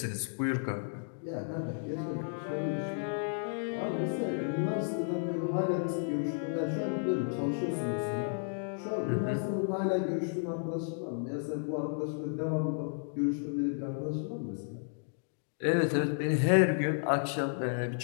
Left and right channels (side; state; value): right; silent; digital silence